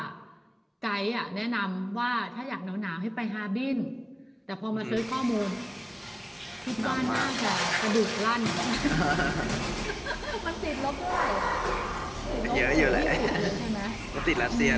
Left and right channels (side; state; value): both; identical; correlation 1.00